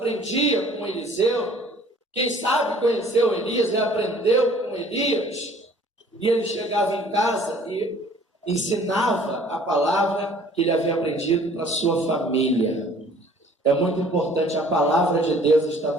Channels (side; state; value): both; normal; correlation 0.54